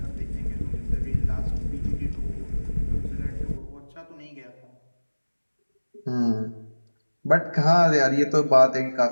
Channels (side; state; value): both; inverted; correlation -1.00